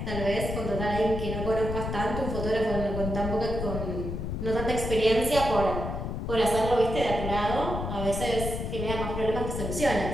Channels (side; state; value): left; noise; rumble, 4 dB below the sound